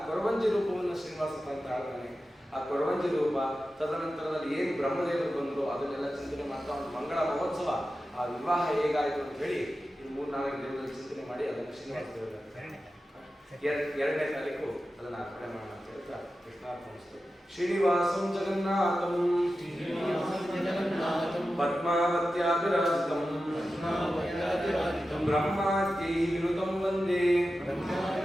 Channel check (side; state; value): both; normal; correlation 0.93